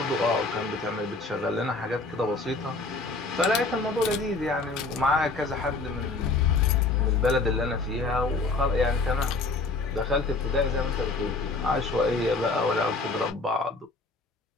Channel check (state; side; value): quieter; right; 3.6 dB